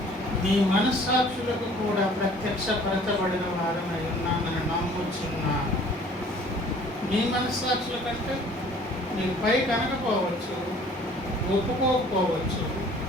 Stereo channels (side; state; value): both; normal; correlation 0.53